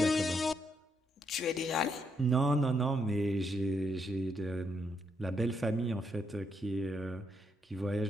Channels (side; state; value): both; normal; correlation 0.77